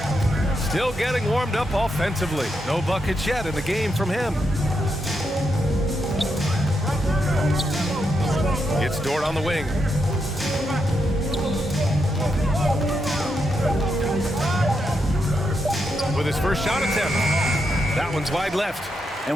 Still getting warmed up offensively. No buckets yet in the game from him. It's Dort on the wing. With his first shot attempt. That one's wide left.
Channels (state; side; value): normal; both; correlation 0.82